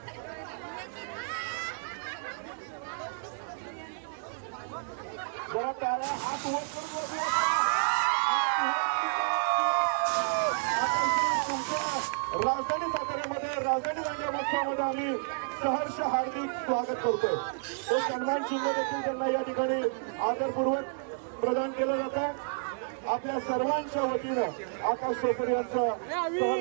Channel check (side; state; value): left; silent; digital silence